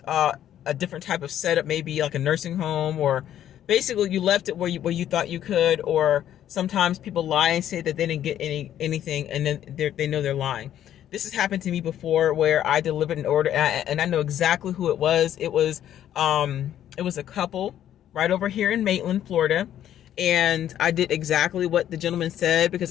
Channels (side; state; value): right; quieter; 11.1 dB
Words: a different type of setup, maybe like a nursing home, or basically you left it where you thought you could. Or sometimes people lie and say that they didn't get anything, and then they know they're lying. This has happened to me before where I delivered an order and I know exactly who it was. It was a couple right over here in Maitland, Florida. And I did exactly what the gentleman said because